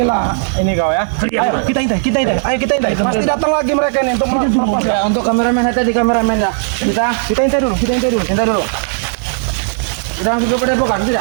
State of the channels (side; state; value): left; silent; digital silence